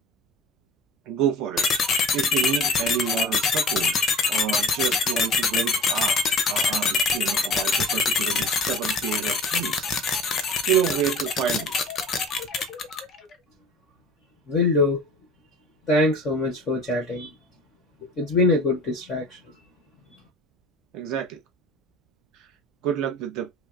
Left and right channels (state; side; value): normal; both; correlation 0.40